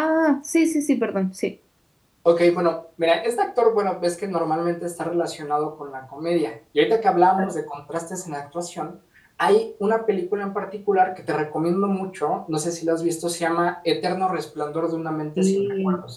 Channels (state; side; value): identical; both; correlation 1.00